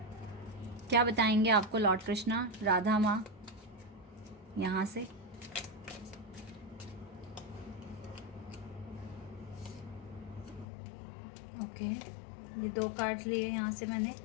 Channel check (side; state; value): right; drops out; at 10.7 s